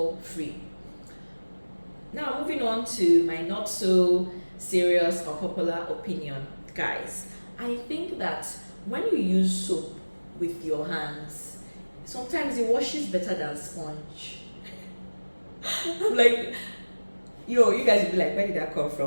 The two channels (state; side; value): inverted; both; correlation -1.00